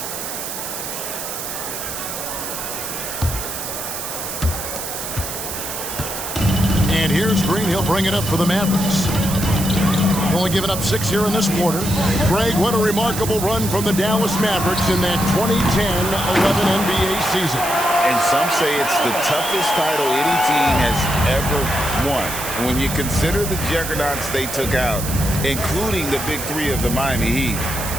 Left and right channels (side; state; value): right; noise; hiss, 6 dB below the sound